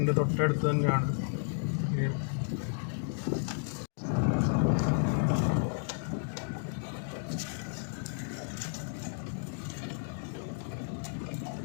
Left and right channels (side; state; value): right; silent; digital silence